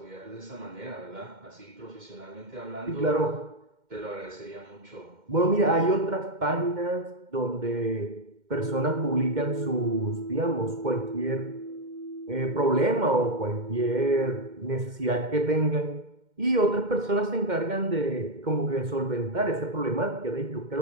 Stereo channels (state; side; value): late; left; 2.1 ms